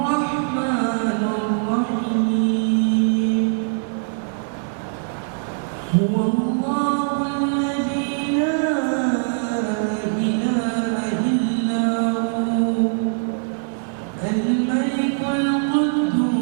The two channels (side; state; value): left; silent; digital silence